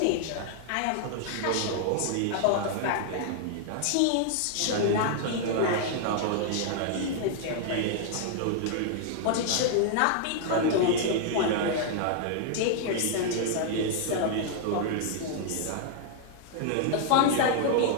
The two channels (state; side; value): different; both; correlation -0.01